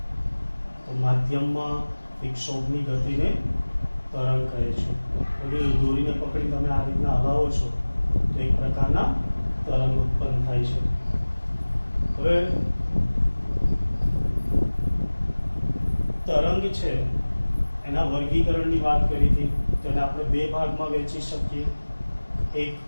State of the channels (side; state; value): both; inverted; correlation -1.00